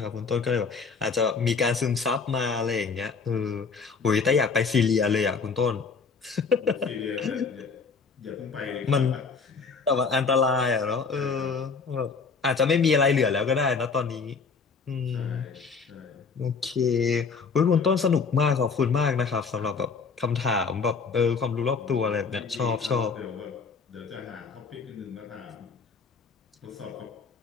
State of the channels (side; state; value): right; quieter; 5.1 dB